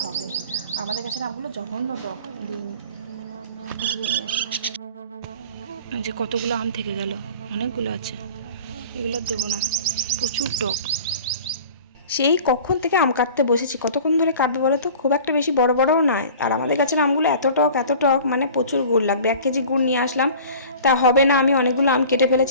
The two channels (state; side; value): inverted; both; correlation -0.43